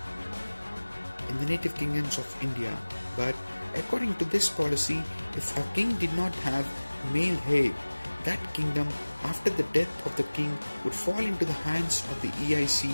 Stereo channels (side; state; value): both; inverted; correlation -1.00